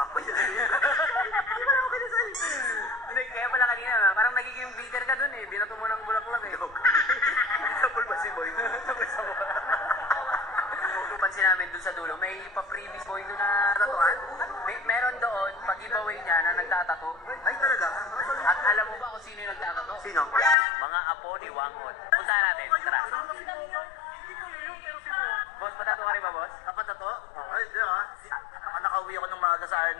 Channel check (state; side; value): drops out; right; at 20.6 s